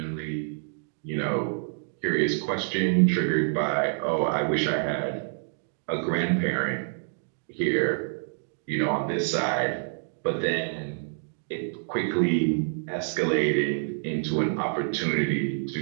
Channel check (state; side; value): silent; left; digital silence